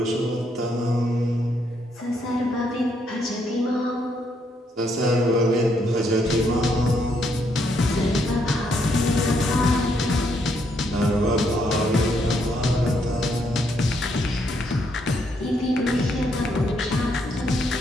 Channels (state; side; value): normal; both; correlation 0.74